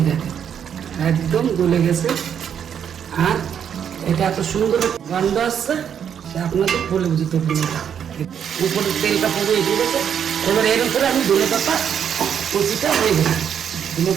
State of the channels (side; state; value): left; quieter; 8.4 dB